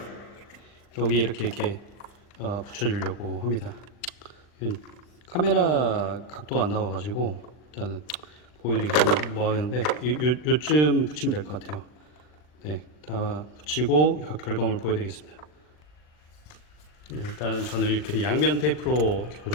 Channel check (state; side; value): late; right; 40 ms